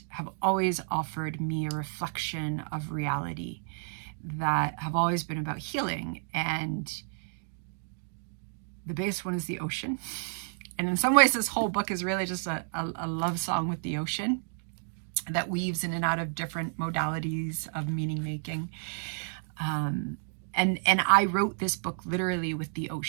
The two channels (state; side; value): silent; left; 57 dB below the other